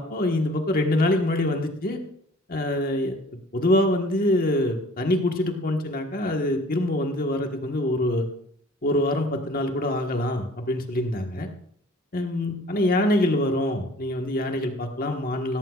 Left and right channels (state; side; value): normal; both; correlation 0.51